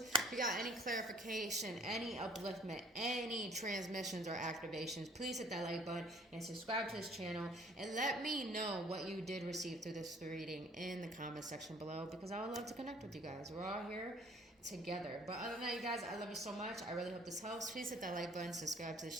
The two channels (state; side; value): normal; both; correlation 0.54